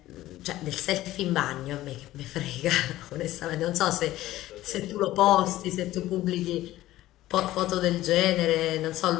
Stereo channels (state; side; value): quieter; right; 15.5 dB